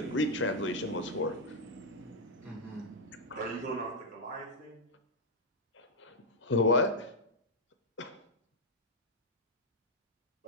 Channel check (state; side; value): normal; both; correlation -0.03